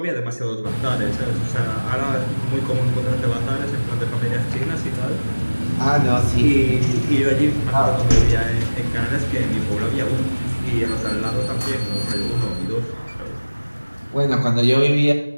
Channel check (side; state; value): both; inverted; correlation -1.00